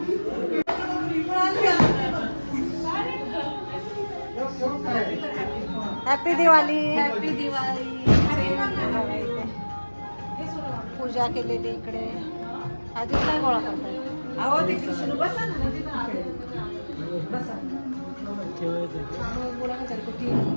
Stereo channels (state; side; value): inverted; both; correlation -1.00